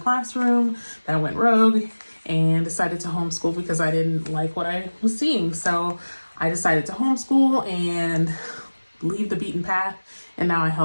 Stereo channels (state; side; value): inverted; both; correlation -1.00